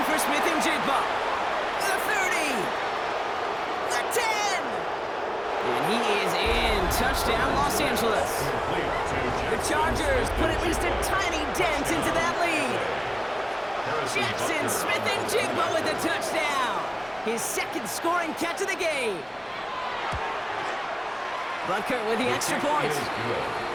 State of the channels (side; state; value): both; identical; correlation 1.00